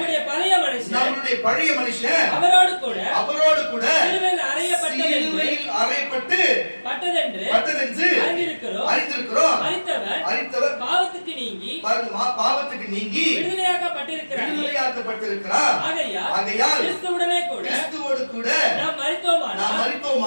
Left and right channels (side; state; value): both; inverted; correlation -1.00